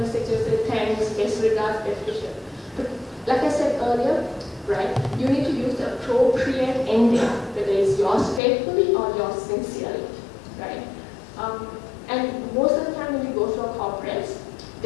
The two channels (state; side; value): drops out; right; at 8.4 s